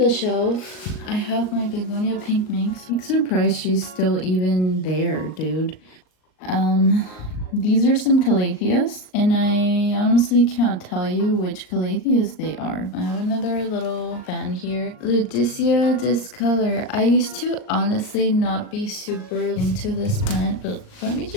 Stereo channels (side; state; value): right; late; 38 ms